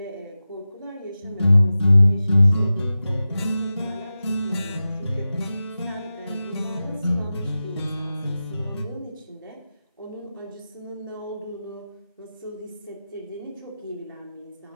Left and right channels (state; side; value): inverted; both; correlation -0.94